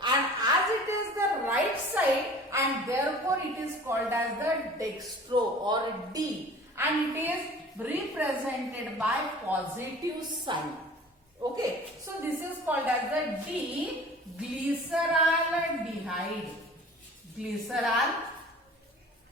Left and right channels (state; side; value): normal; both; correlation 0.44